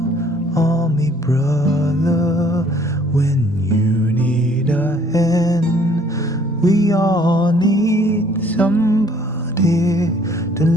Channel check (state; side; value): normal; both; correlation 0.60